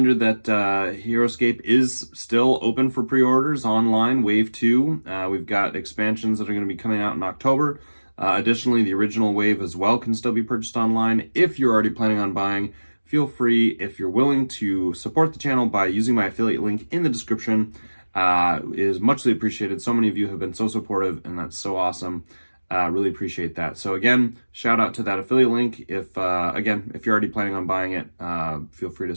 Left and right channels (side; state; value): both; inverted; correlation -1.00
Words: that Heroscape is still open for pre-orders online, Wave 2. We've got expansions that are going to be coming out in October. Additionally, the original wave as well can still be purchased online. If you're already planning on buying, feel free, if you're willing, to support the channel by using my affiliate link in the description. Is muchly appreciated. So many of you have been so supportive, and that's so awesome. Really appreciate that. So again, shout out to that affiliate link. If you're already planning on buying it, feel free to